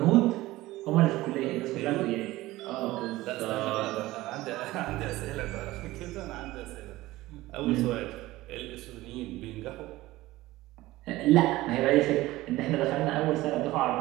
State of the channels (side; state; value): left; quieter; 17.8 dB